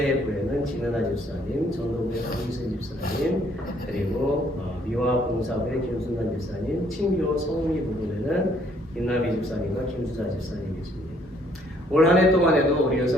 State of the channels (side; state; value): both; normal; correlation 0.65